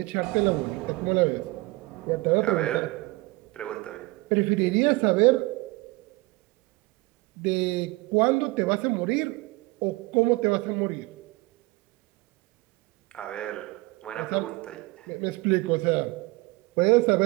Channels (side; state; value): left; quieter; 22.5 dB